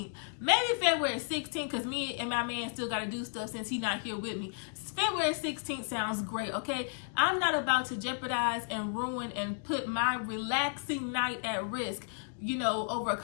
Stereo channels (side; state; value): right; silent; digital silence